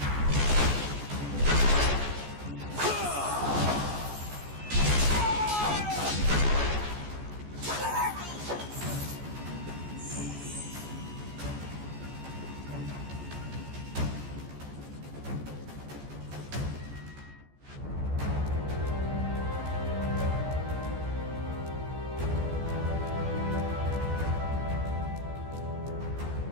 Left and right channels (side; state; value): left; late; 14 ms